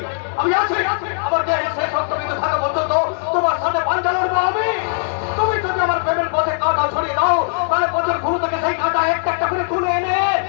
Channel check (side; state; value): right; silent; digital silence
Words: আমি আছি, আমার দেহে শেষ রক্তবিন্দু থাকা পর্যন্ত তোমার সাথে পাঞ্জা লড়বো আমি। তুমি যদি আমার প্রেমের পথে কাঁটা ছড়িয়ে দাও, তাহলে পথের ঘুরু থেকে সেই কাঁটা একটা একটা করে তুলে এনে